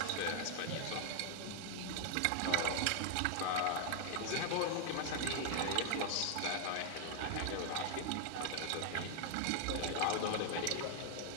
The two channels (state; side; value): different; both; correlation 0.00